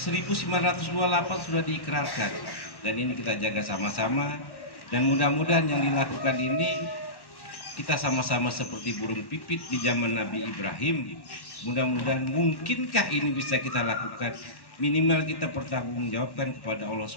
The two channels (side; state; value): right; late; 1.1 ms